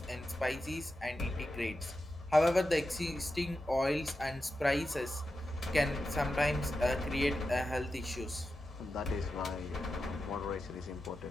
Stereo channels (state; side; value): normal; both; correlation 0.90